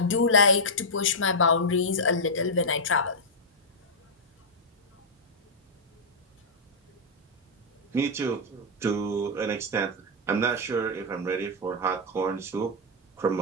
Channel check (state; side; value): normal; both; correlation -0.06